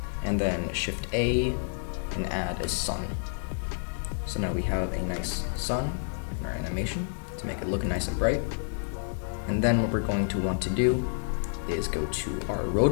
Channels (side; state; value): right; silent; digital silence